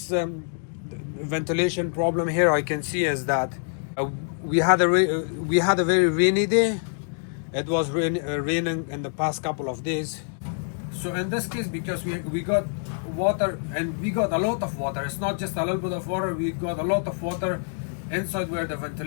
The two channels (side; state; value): right; silent; 61 dB below the other